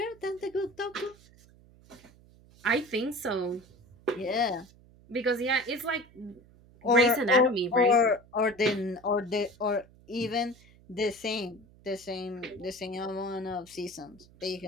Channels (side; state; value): right; noise; hum, 26 dB below the sound